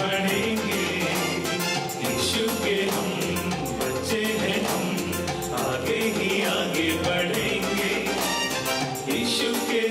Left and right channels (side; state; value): both; identical; correlation 1.00